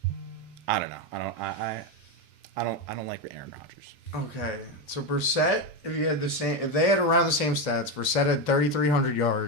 I don't know. I don't like Aaron Rodgers. Okay, so Brissett, if they had around the same stats, Brissett had 3,300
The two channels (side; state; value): both; normal; correlation 0.11